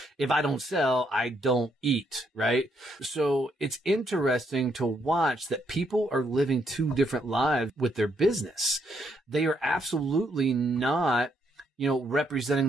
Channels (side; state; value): both; normal; correlation 0.74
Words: if I don't sell, I don't eat, right? So it's interesting to watch that people are living two different lives with their business. They are absolutely not representing